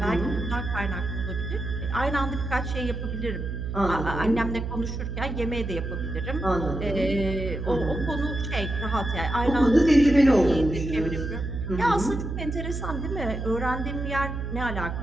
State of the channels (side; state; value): right; noise; hum, 4 dB below the sound